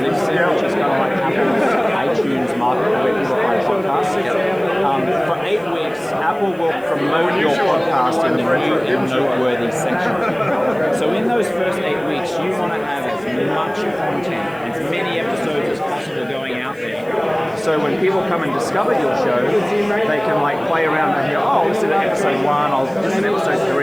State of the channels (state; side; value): noise; left; hiss, 29 dB below the sound